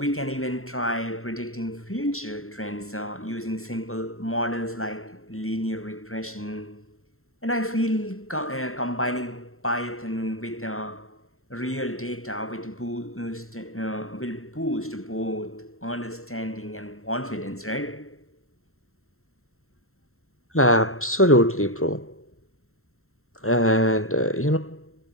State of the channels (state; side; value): late; right; 0.62 ms